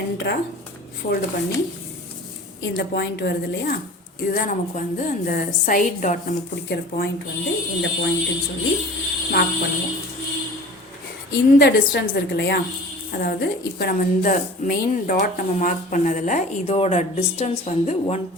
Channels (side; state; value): both; normal; correlation 0.41